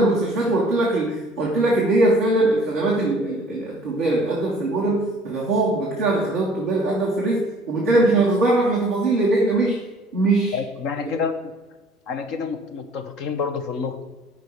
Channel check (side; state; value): both; normal; correlation 0.55